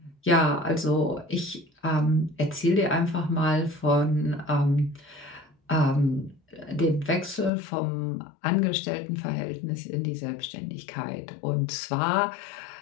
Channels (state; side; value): drops out; right; at 7.5 s